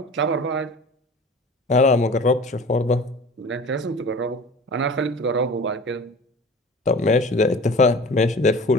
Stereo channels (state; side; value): normal; both; correlation 0.40